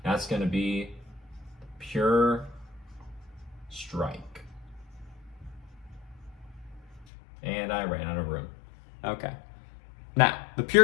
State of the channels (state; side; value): drops out; right; at 7.1 s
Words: That's going to be Pure Strike. And I ran out of room. Okay. Now, the